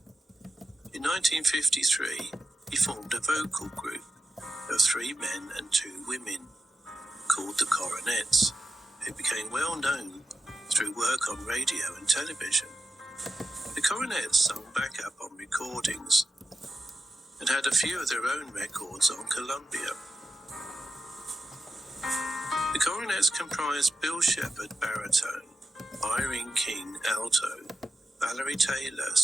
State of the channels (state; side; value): normal; both; correlation 0.90